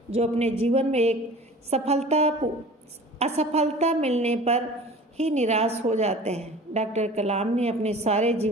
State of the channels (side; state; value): both; normal; correlation 0.42